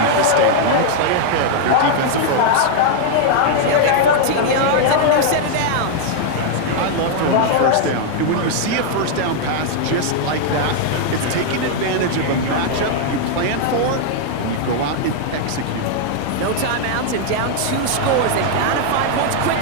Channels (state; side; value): different; both; correlation 0.00